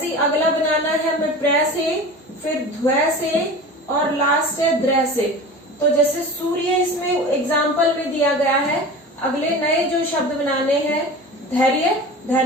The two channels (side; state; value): both; normal; correlation 0.35